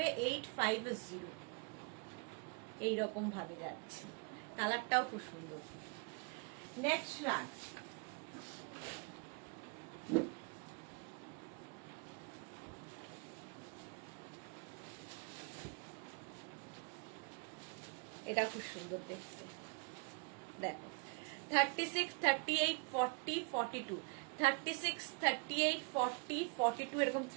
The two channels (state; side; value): quieter; left; 32.8 dB